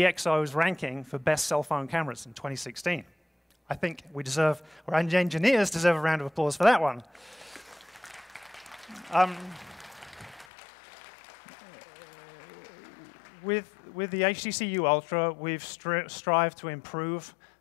ranking for best cell phone cameras in 2016. I think our engineers deserve a round of applause for that one. With the HTC U Ultra, we've strived to improve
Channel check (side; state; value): right; drops out; at 10.5 s